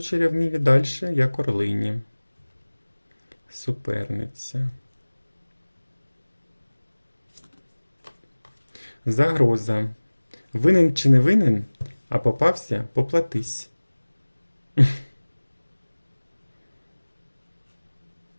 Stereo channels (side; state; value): both; inverted; correlation -1.00